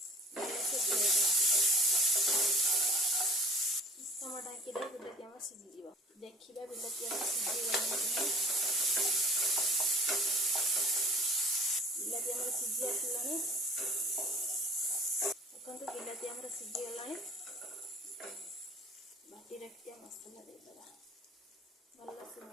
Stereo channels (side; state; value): both; normal; correlation 0.44